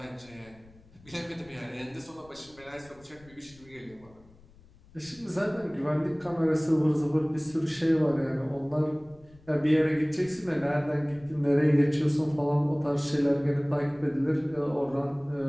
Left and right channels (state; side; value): noise; left; rumble, 26 dB below the sound